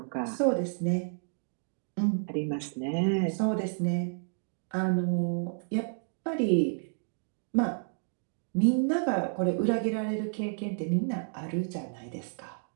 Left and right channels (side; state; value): left; silent; digital silence